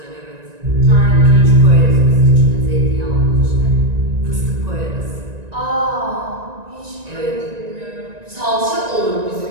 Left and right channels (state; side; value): late; left; 1.9 ms